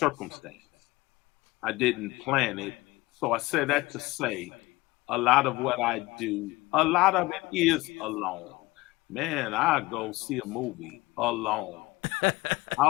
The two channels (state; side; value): quieter; right; 20.9 dB